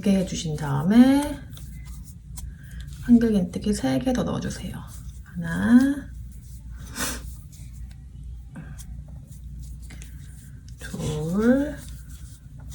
해주신 다음에 한길긴뜨기 3개 더 넣어주세요. 하나, 둘,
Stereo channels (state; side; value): identical; both; correlation 1.00